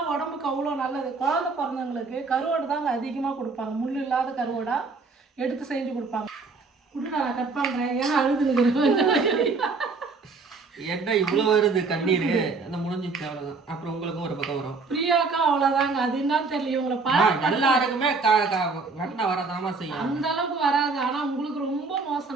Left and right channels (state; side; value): quieter; left; 4.2 dB